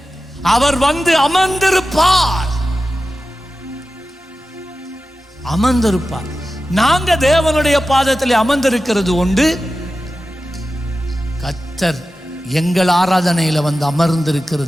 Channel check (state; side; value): normal; both; correlation 0.93